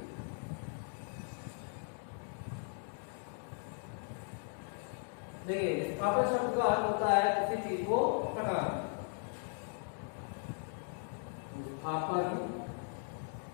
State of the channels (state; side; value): silent; right; 52 dB below the other